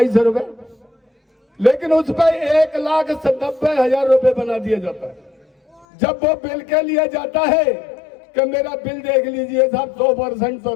रुपए। लेकिन उस पर 1,90,000 रुपए बना दिया जाता है। जब वो बिल के लिए जाता है कि मेरा बिल देख लीजिए साहब, 100%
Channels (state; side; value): drops out; right; at 5.9 s